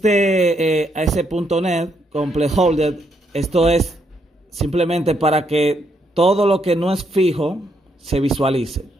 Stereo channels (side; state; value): both; normal; correlation 0.76